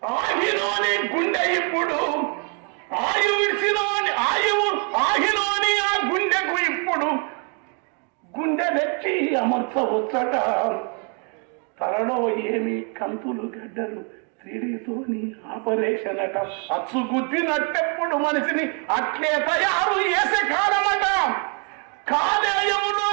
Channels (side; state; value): left; quieter; 38.2 dB